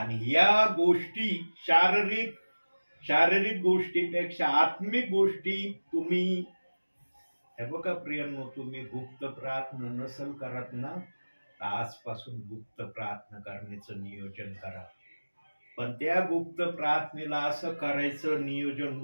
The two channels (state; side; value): inverted; both; correlation -1.00